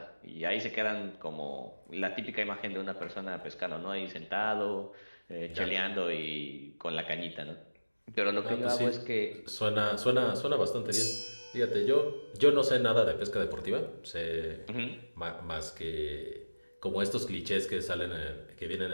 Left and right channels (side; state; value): both; inverted; correlation -1.00